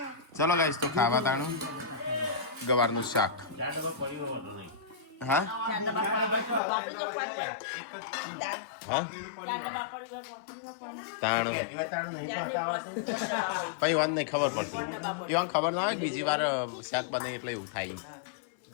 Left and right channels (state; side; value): drops out; right; at 6.6 s